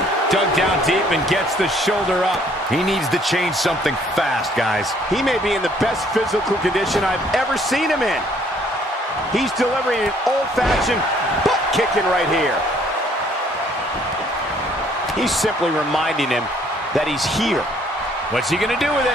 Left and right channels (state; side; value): normal; both; correlation 0.62